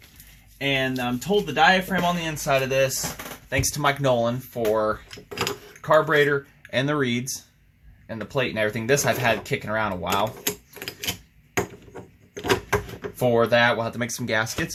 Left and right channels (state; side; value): identical; both; correlation 1.00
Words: And I'm told the diaphragm on the inside of this, thanks to Mike Nolan for carburetor and the reeds and the plate and everything. This I've had kicking around a while. For that, we'll have to make some